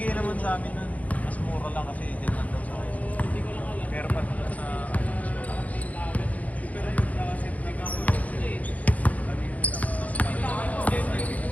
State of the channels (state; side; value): late; right; 0.072 ms